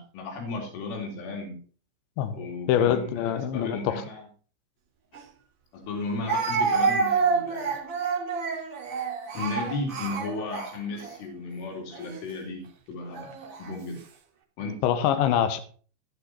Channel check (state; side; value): late; right; 15 ms